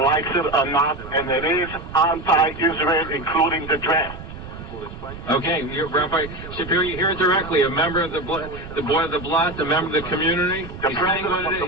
it or not, and it is anti-Israel, including the draft. Okay, Rabbi Shapiro, you hear it directly. A member of the board of the Blad, a member of the community. The president of the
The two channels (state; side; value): noise; right; rumble, 13 dB below the sound